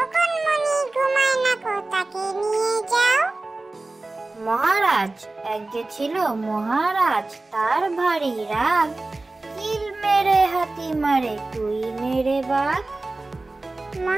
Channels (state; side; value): quieter; left; 3.1 dB